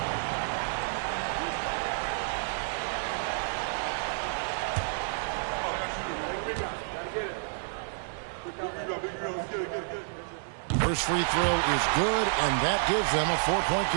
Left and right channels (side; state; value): left; silent; digital silence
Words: First free throw is good, and that gives them a 4-point